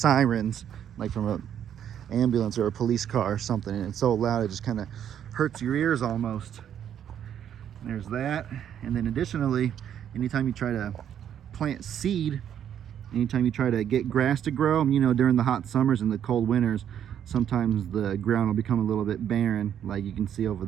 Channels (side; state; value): left; quieter; 9.6 dB